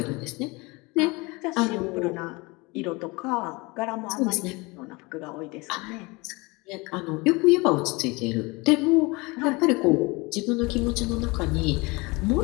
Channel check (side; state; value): right; quieter; 25.3 dB